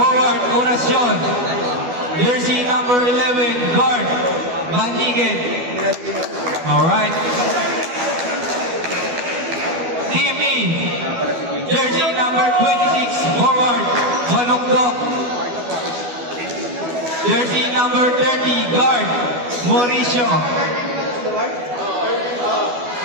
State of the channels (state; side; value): late; left; 12 ms